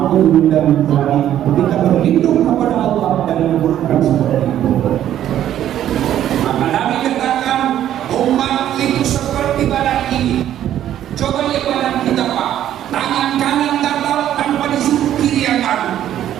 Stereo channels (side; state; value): left; quieter; 11.4 dB